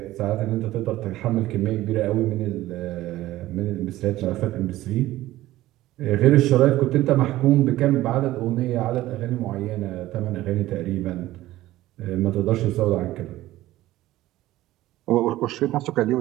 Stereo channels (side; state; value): left; quieter; 15.9 dB